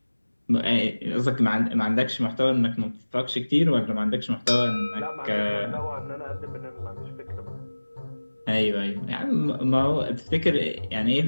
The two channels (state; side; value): inverted; both; correlation -1.00